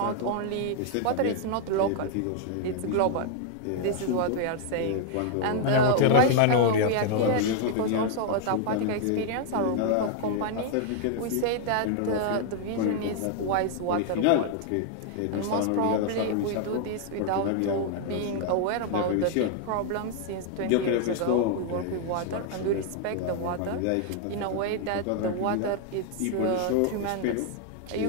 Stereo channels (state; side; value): different; both; correlation 0.00